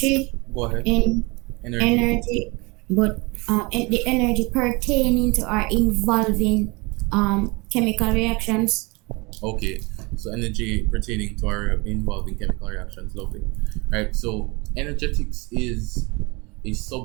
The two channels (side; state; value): left; quieter; 26.3 dB